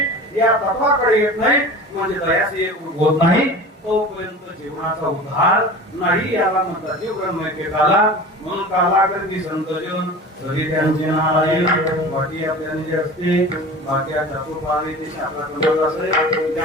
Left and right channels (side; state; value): both; normal; correlation 0.36